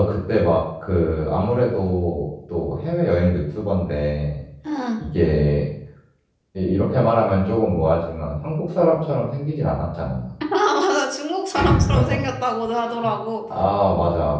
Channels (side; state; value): both; identical; correlation 1.00